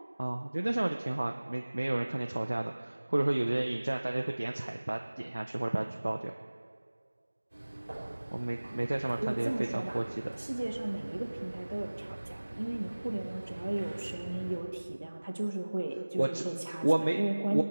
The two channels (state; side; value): inverted; both; correlation -1.00